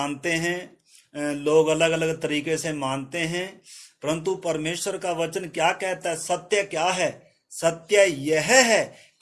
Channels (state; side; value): identical; both; correlation 1.00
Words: हैं, लोग अलग अलग तरीके से मानते हैं, परंतु परमेश्वर का वचन क्या कहता है? सत्य क्या है? सत्य यह है